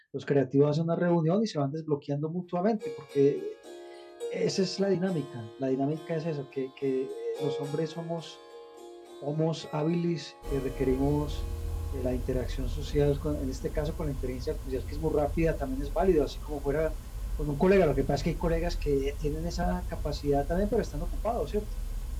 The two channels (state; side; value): identical; both; correlation 1.00